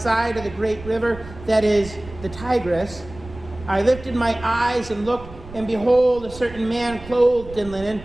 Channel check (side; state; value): right; noise; rumble, 16 dB below the sound